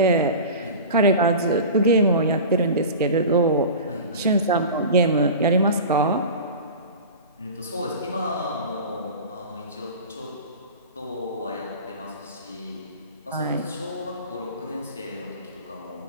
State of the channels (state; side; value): inverted; both; correlation -0.34